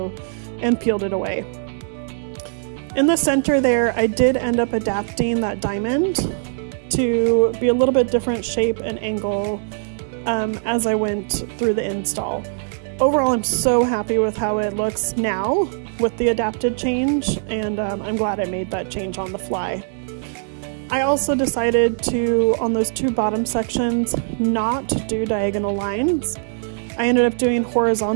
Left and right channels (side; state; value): left; silent; digital silence